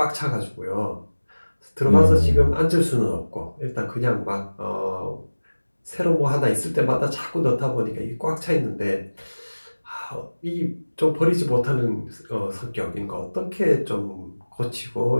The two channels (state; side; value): inverted; both; correlation -1.00